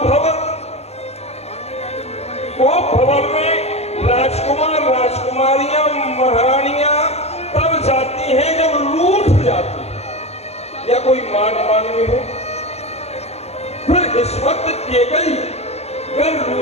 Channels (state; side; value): late; right; 0.31 ms